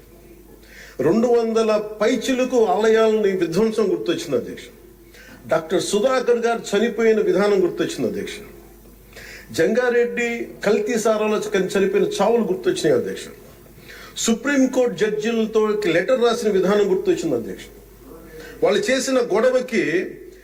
200 పైచిలకు ఆలయాలని విధ్వంసం గుర్తొచ్చింది అధ్యక్ష. డాక్టర్ సుధాకర్ గారు చనిపోయిన విధానం గుర్తొచ్చింది అధ్యక్ష. జంగారెడ్డి కల్తీ సారాలో చనిపోయిన చావులు గుర్తొచ్చినాయి అధ్యక్ష. సుప్రీంకోర్టు జడ్జిలతో లెటర్ రాసిన విధానం గుర్తొచ్చింది అధ్యక్ష. వాళ్ళు చేసిన గొడవకి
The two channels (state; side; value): identical; both; correlation 1.00